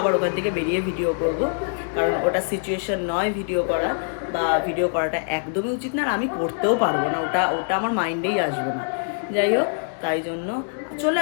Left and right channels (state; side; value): silent; right; digital silence